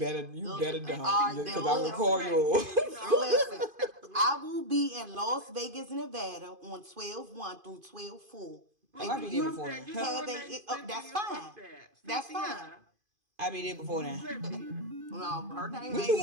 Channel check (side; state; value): left; late; 2.5 ms